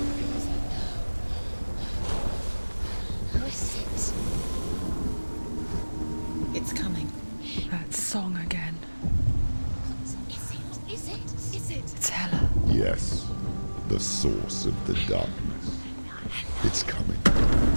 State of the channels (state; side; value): inverted; both; correlation -1.00